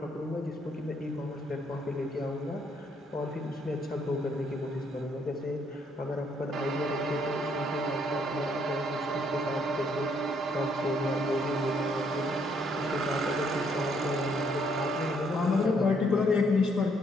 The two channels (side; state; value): both; normal; correlation 0.69